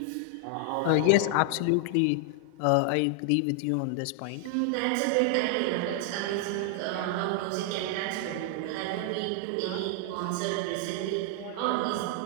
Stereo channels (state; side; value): different; both; correlation 0.00